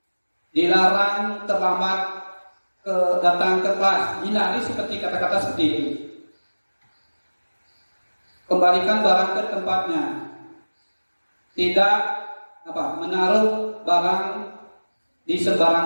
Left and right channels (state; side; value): inverted; both; correlation -1.00